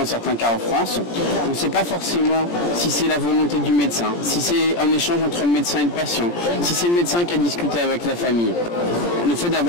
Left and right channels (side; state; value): right; late; 17 ms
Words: certains cas en France. On ne sait pas forcément si c'est la volonté du médecin, si c'est un échange entre le médecin et le patient, si c'est le médecin qui a discuté avec la famille. Le fait